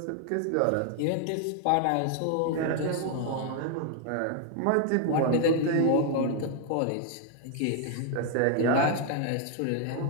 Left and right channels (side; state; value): both; different; correlation 0.00